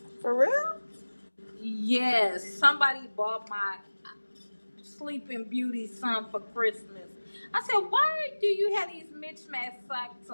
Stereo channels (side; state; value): both; inverted; correlation -1.00